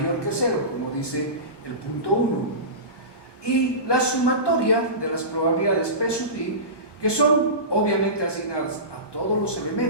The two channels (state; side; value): late; right; 1.2 ms